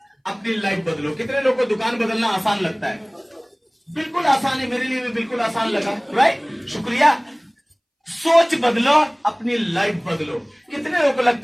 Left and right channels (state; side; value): identical; both; correlation 1.00